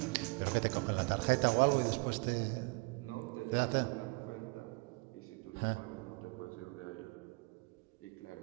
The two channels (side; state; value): left; quieter; 29.3 dB